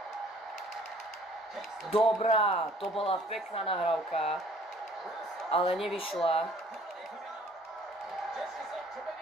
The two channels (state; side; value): normal; both; correlation 0.55